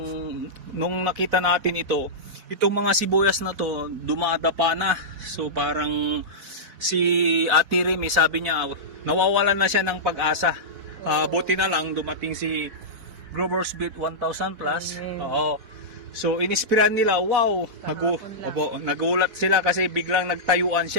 nung nakita natin itong mga sibuyas na to dumadapa na. So parang si Ate Remy, sabi niya nawawalan na siya ng pag-asa. Buti na lang dumating si Growers Beat 1000 plus. Oo. So inispiran nila, wow, nagulat sila kasi biglang nagtayuan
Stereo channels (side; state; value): left; late; 4.1 ms